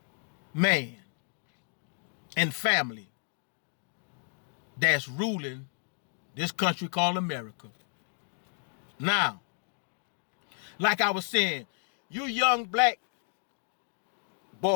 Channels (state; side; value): silent; right; 57 dB below the other